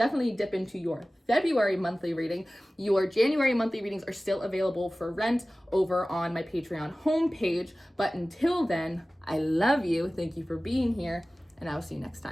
dip into your February monthly reading. Your January monthly readings are still available for rent over on my Patreon homepage. But until then, I love you. Thank you for being here, and I will see you next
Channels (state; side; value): normal; both; correlation 0.97